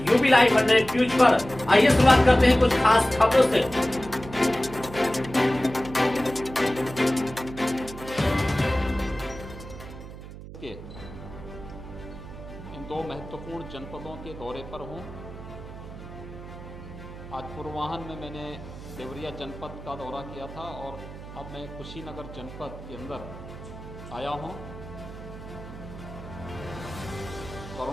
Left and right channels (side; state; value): right; noise; hum, 13 dB below the sound